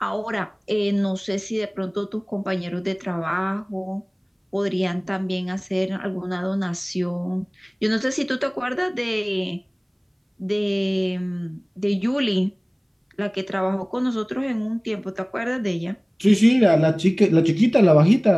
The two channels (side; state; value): both; identical; correlation 1.00